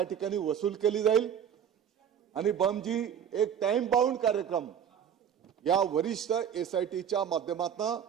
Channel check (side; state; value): left; quieter; 8.7 dB